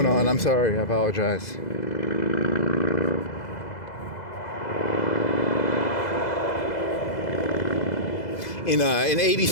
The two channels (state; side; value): late; right; 2.0 ms